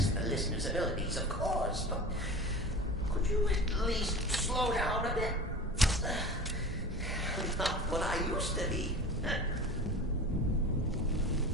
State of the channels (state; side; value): normal; both; correlation 0.35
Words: the listener's abilities, of course, but could you at least slow down a bit? Not what I used to be.